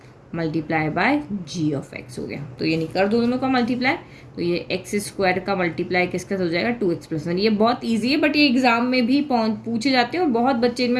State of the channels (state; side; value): identical; both; correlation 1.00